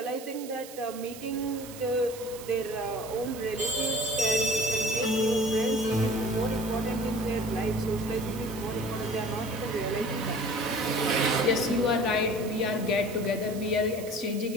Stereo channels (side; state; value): right; noise; hiss, 15 dB below the sound